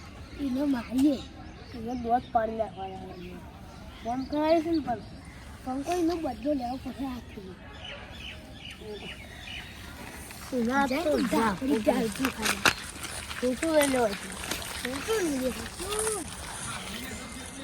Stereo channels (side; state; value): both; identical; correlation 1.00